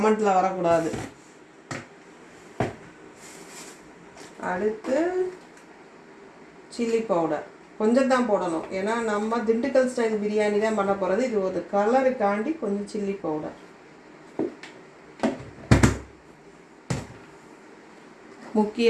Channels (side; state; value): both; identical; correlation 1.00